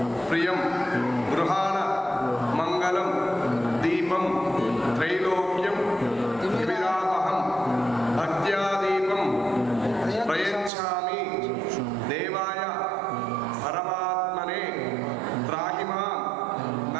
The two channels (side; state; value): left; drops out; at 10.7 s